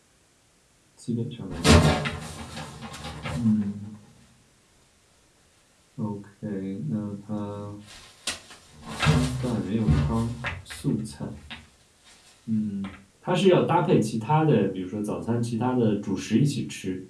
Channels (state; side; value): identical; both; correlation 1.00